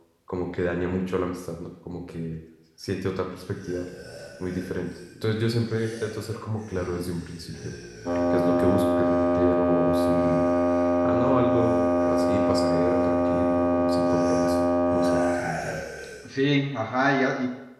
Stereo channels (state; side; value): identical; both; correlation 1.00